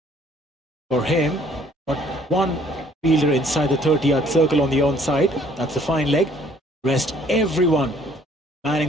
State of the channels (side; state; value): both; normal; correlation 0.60